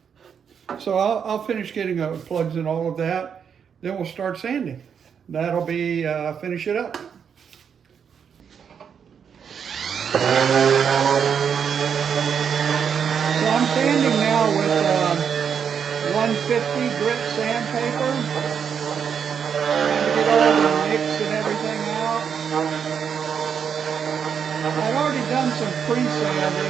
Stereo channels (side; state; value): left; quieter; 7.3 dB